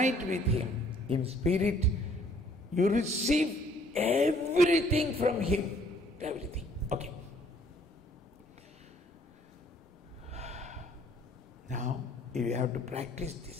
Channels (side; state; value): both; normal; correlation 0.61